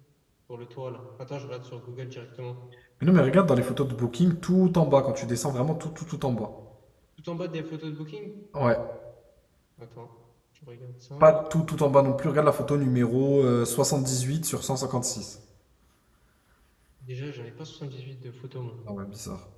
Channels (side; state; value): both; identical; correlation 1.00